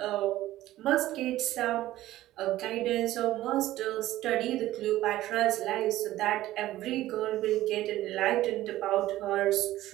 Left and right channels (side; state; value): left; quieter; 15.2 dB